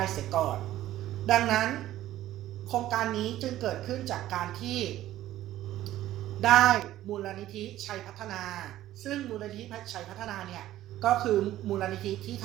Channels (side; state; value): left; quieter; 13.9 dB